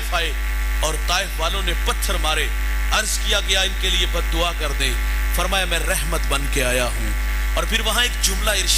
آئے اور طائف والوں نے پتھر مارے. عرض کیا گیا ان کے لیے بد دعا کر دیں. فرمایا میں رحمت بن کے آیا ہوں. اور پھر وہاں ایک جملہ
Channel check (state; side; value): identical; both; correlation 1.00